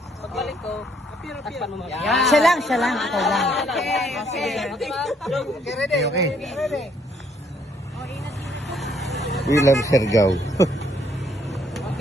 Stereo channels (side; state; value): both; normal; correlation 0.68